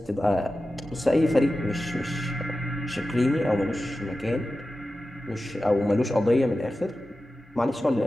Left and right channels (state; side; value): normal; both; correlation 0.94